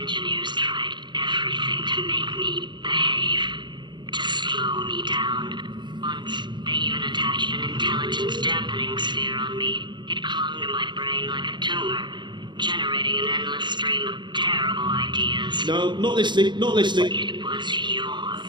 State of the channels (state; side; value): late; left; 0.22 ms